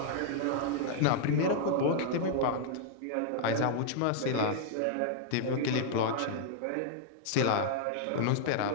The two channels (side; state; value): both; different; correlation -0.01